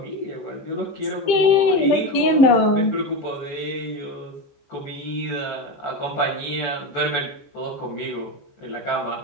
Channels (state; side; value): late; right; 15 ms